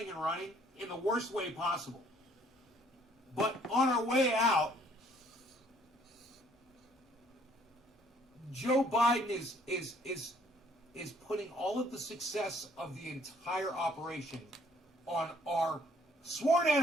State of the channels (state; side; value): normal; both; correlation 0.62